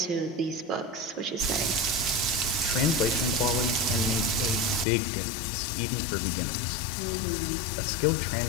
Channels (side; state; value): right; drops out; at 4.9 s